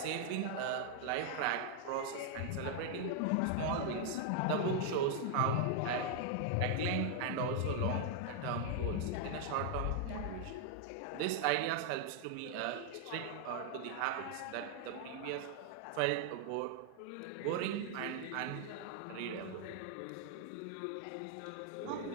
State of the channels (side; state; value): both; different; correlation 0.00